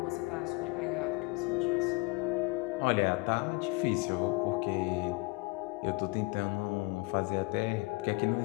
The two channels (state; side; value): quieter; right; 25.2 dB